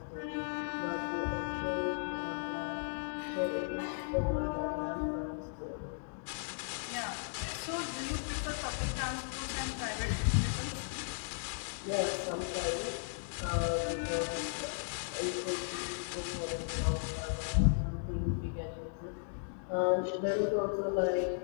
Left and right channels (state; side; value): silent; right; digital silence